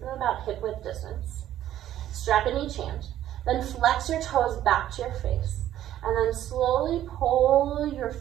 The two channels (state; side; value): quieter; left; 12.3 dB